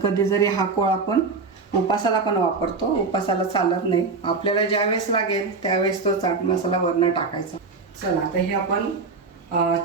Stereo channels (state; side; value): quieter; left; 4.3 dB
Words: जरी हा कोळ आपण उपासाला पण वापरतो. उपासाला चालत नाही, आपल्याला ज्यावेळेस लागेल त्यावेळेस तो चाट मसाला वरनं टाकायचा. चला आता हे आपण